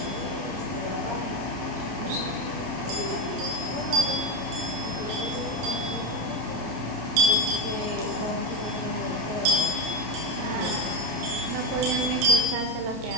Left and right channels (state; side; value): late; left; 30 ms